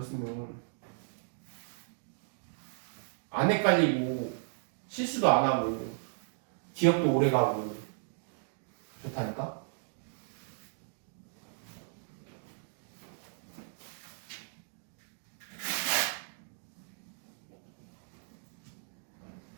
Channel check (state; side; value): silent; left; digital silence